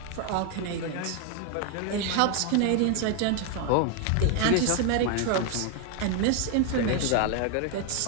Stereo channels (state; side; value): different; both; correlation 0.01